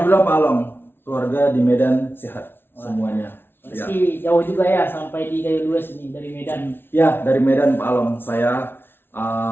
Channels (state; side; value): late; right; 0.11 ms